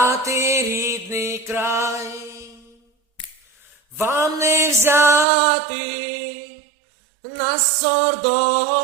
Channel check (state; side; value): drops out; left; at 5.2 s